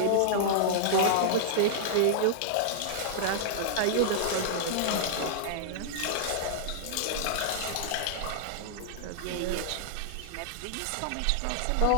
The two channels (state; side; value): different; both; correlation -0.01